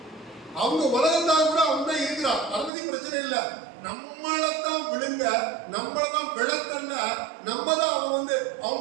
அவங்க உலகத்தால் கூட அவங்க இருக்கிறான். அதை பத்தி பிரச்சனை இல்லை. நம்மளத்தான் விழுங்க, நம்மளதான் விளக்கல்ல, நம்ம தான் அவன்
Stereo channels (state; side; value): drops out; left; at 2.7 s